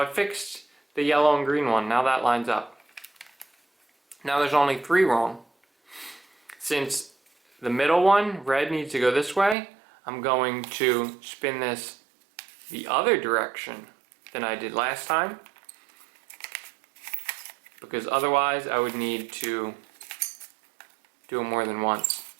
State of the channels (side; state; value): left; drops out; at 9.6 s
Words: fixed the yellow and green one, now that lines up. Now there's only 3 wrong. Since the middle one, red, needs to go this way, I'm going to spin this the other direction than I did last time. Because otherwise I would need to do it more than once.